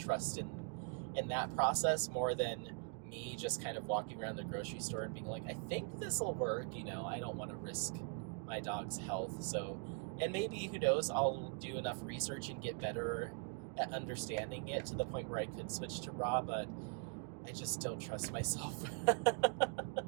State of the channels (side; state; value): left; quieter; 40.0 dB